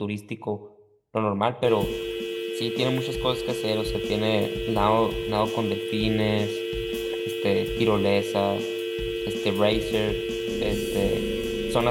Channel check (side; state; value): both; identical; correlation 1.00